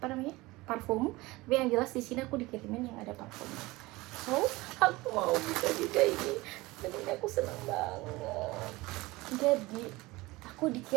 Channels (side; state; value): left; quieter; 21.1 dB